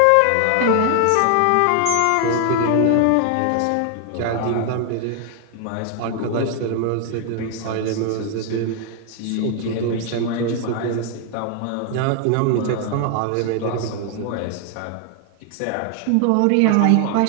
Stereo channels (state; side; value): different; both; correlation 0.00